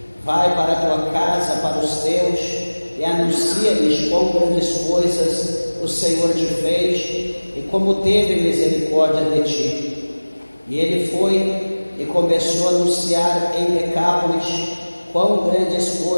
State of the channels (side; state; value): both; inverted; correlation -1.00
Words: Vai para a tua casa, para os teus, e anuncia-lhes quão grandes coisas o Senhor te fez e como teve misericórdia de ti. E ele foi e começou a anunciar em Decápolis quão grandes